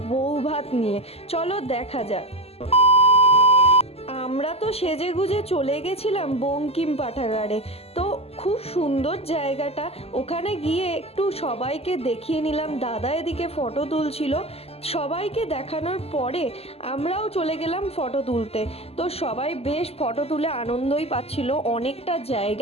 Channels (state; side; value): late; right; 0.29 ms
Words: বউ ভাত নিয়ে। চলো দেখা যাক। আমরা তো সেজে গুজে চলে গেছিলাম বঙ্কিম পাঠাগারে। তো খুব সুন্দর জায়গাটা, ওখানে গিয়ে একটু সবাইকে দেখিয়ে নিলাম। দাদা এদিকে ফটো তুলছিল, সবাইকে দেখানোর পরে আমরাও চলে গেলাম ফটো তুলতে। তো সবাই বেশ ফটো তুলে আনন্দই পাচ্ছিল, অনেকটা